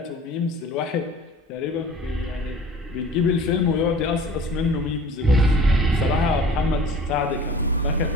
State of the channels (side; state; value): both; normal; correlation 0.44